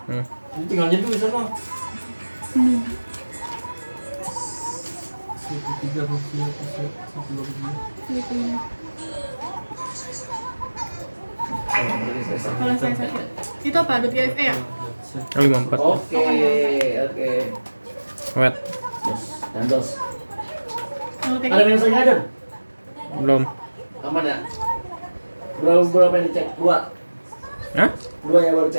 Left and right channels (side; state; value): both; inverted; correlation -1.00